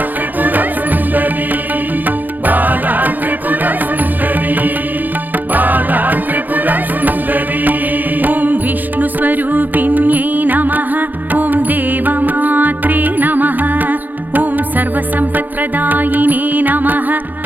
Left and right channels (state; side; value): late; left; 0.085 ms